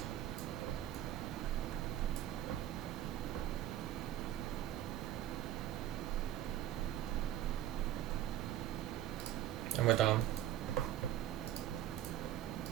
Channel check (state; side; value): quieter; left; 12.0 dB